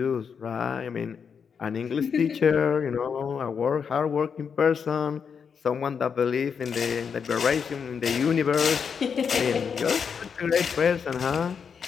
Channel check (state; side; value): quieter; right; 6.5 dB